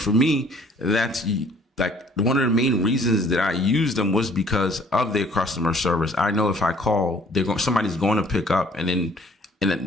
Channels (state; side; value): normal; both; correlation 0.57